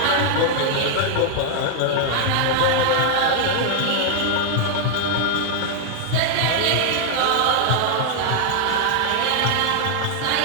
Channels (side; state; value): both; different; correlation -0.01